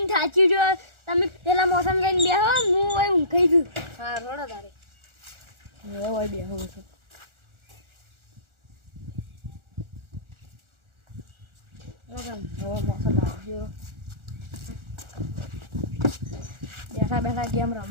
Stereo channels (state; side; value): late; left; 1.4 ms